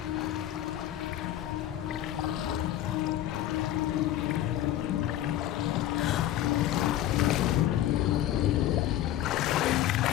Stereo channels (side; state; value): right; quieter; 12.8 dB